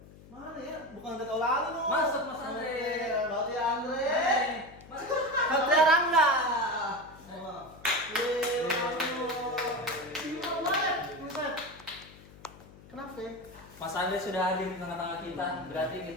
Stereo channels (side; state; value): left; noise; hum, 21 dB below the sound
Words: Mana ya? Bukan Andre Taulani lu. Masuk, Mas Andre. Berarti Andre. Hai, Mas. Satria Rangga. Kenapa? Mas Andre sudah hadir di tengah-tengah kita, berarti